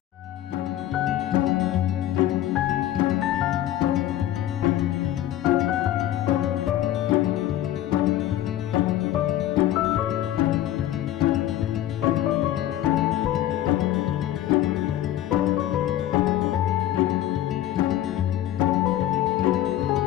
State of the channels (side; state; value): right; quieter; 13.0 dB